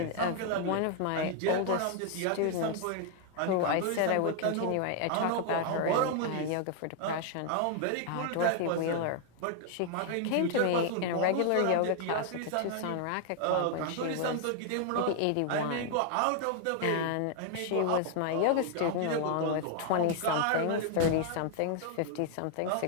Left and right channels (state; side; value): different; both; correlation 0.00